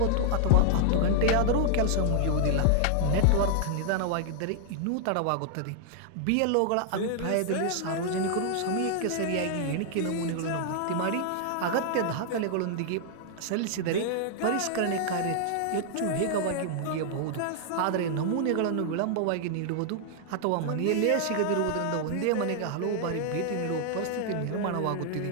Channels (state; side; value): different; both; correlation -0.01